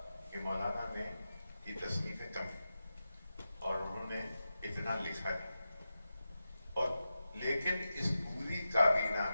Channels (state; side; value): inverted; both; correlation -0.92